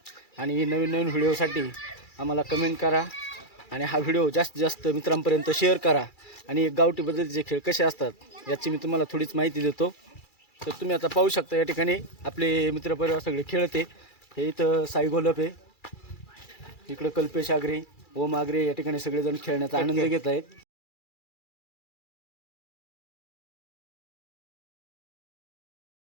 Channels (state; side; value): late; right; 2.3 ms